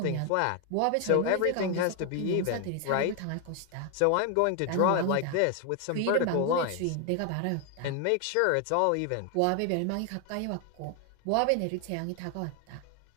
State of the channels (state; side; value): different; both; correlation 0.00